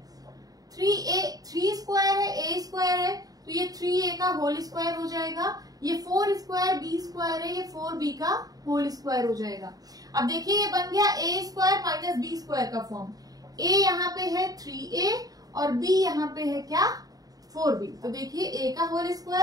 3 square है, a स्क्वायर है, तो ये 3a का होल स्क्वायर हो जाएगा। ये 4 स्क्वायर बी स्क्वायर है, ये 4b का होल स्क्वायर हो जाएगा। अब देखिए ये बन गया a square minus b square का फॉर्म। a यहाँ पे है 3a और b यहाँ पे है क्या? 4b। तो देखिए a का होल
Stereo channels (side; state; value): left; late; 0.18 ms